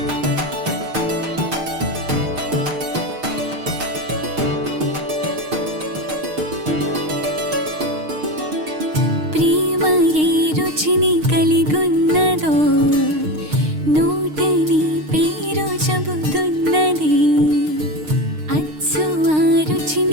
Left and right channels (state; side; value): late; left; 6.5 ms